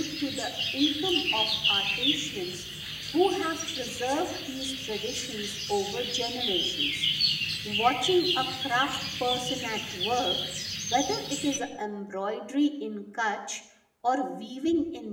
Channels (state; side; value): identical; both; correlation 1.00